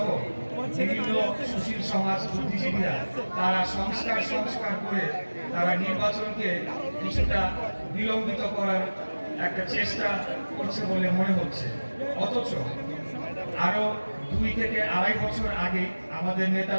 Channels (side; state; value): both; inverted; correlation -1.00